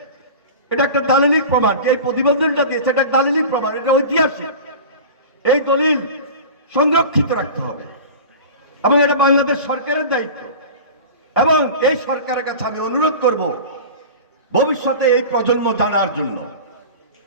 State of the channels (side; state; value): both; inverted; correlation -0.34